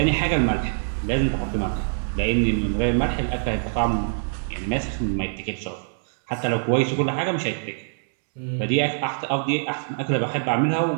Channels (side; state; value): left; silent; digital silence